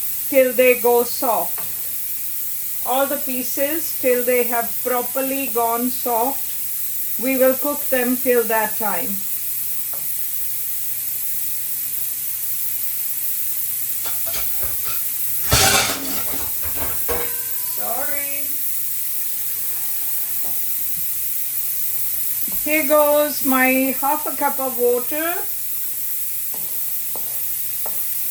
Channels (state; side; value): identical; both; correlation 1.00